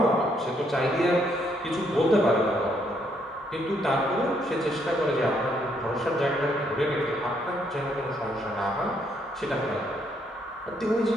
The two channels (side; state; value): both; normal; correlation 0.72